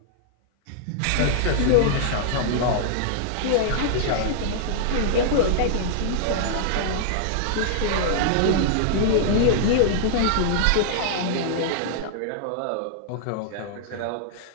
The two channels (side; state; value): both; different; correlation -0.01